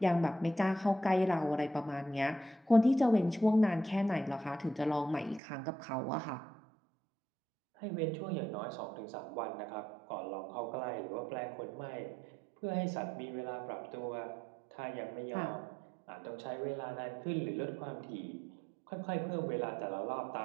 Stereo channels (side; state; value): left; drops out; at 5.4 s